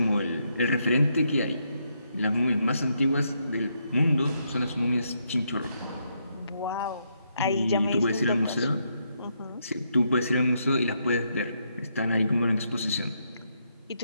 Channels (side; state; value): both; inverted; correlation -0.78